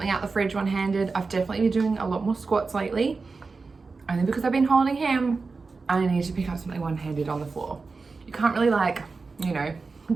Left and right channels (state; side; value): quieter; left; 4.2 dB